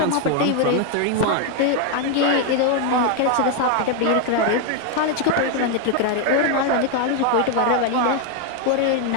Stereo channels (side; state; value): both; different; correlation 0.01